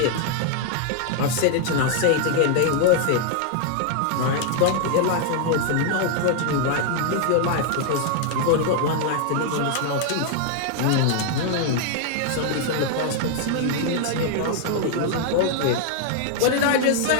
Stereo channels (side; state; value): both; different; correlation 0.00